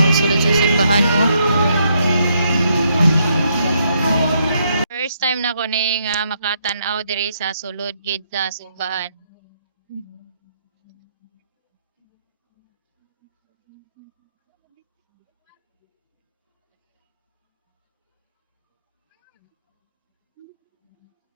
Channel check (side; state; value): both; inverted; correlation -0.75